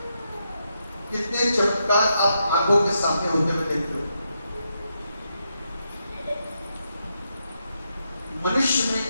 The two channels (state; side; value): inverted; both; correlation -0.83